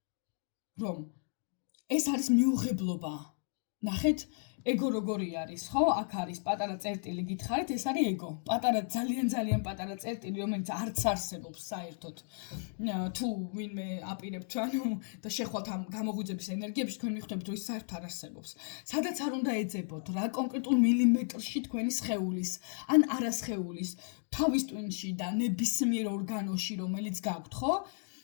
რომ ეს არის მიუღებლობა. ნახეთ, ეგო როგორი არის, ხო? აქ არის პატარა წერტილი, გითხარით, ეს არის ეგო. პატარა, ძალიან პატარა წერტილი, რომელიც არც არსებობს საერთოდ. თუ ვინმე აპირებთ, და შეხვალთ ამ გამოღვიძების ენერგიებში, თქვენ მიხვდებით, რომ ის საერთოდ არ არსებობს. სადაც არ უნდა ეძებოთ, რა კონკრეტულ მილიმეტრში თქვენი სხეულის, ან არასხეულის, თავის ტვინში და ნებისმიერ ორგანოში, რომელიც გაქვთ, ხო?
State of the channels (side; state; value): right; silent; 55 dB below the other